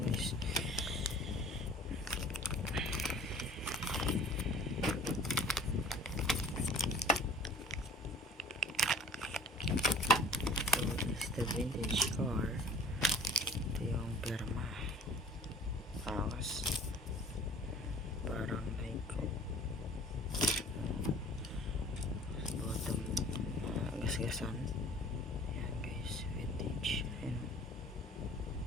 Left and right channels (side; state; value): both; normal; correlation 0.48